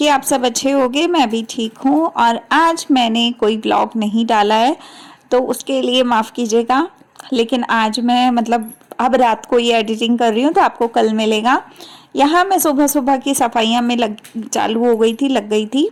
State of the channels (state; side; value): identical; both; correlation 1.00